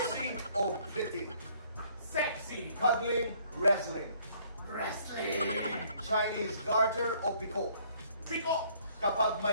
o pretty? Sexy! Cuddling, wrestling? Wrestling! Chinese garter o piko? Piko! Kapag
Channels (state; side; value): inverted; both; correlation -0.62